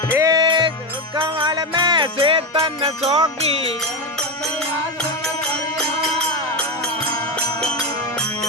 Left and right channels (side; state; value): both; normal; correlation 0.13